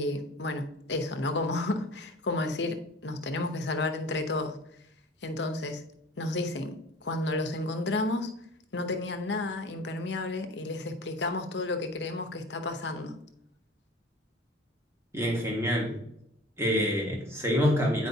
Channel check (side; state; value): both; normal; correlation 0.43